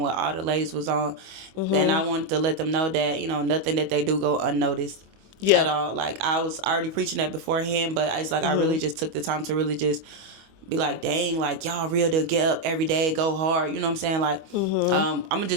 what all the ladies was on. Then I wanted to let them know that, nothing that they do go unnoticed. Yeah. At all. I was already preaching that beforehand, but it's I really just took the time to really just be like, dang, y'all real to get up every day, go hard. You know what I'm saying? I'm gonna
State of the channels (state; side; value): late; left; 25 ms